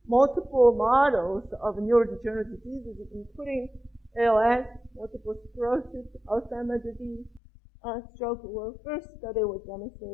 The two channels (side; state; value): right; drops out; at 7.4 s